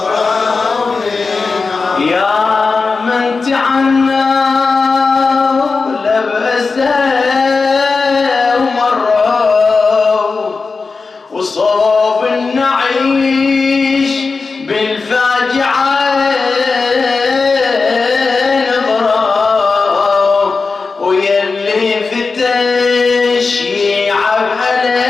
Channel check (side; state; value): right; quieter; 4.3 dB